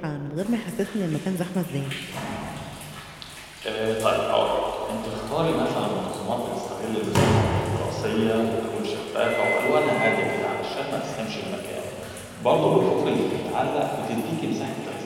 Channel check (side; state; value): both; identical; correlation 1.00